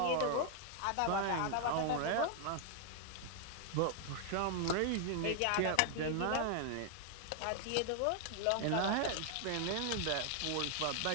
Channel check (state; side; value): different; both; correlation 0.00